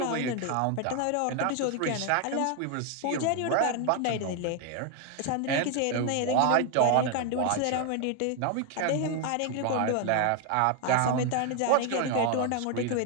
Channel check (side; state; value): both; different; correlation 0.00